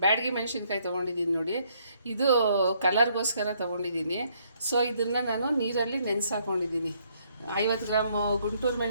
ಬ್ಯಾಡಗಿ ಮೆಣಸಿನ್ಕಾಯಿ ತೊಗೊಂಡಿದ್ದೀನಿ. ನೋಡಿ, ಇದು ಕಲರ್ಗೋಸ್ಕರ ತೊಗೊಂಡಿದ್ದೀನಿ. ಸೊ ಇದನ್ನು ನಾನು ನೀರಲ್ಲಿ ನೆನೆಸಾಕೊಂಡಿದ್ದೀನಿ. 50 ಗ್ರಾಮ್ ಗುಂಟೂರು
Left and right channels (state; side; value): inverted; both; correlation -0.69